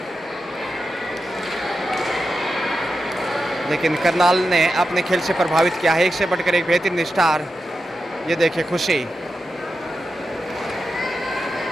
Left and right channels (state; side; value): normal; both; correlation 0.89